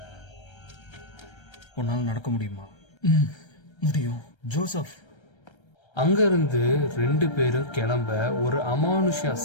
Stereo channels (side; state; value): right; late; 1.3 ms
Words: உன்னால் நடக்க முடியுமா? முடியும் ஜோசப். அங்கிருந்து 2 பேரும் கிளம்ப ஒரு அமானுஷ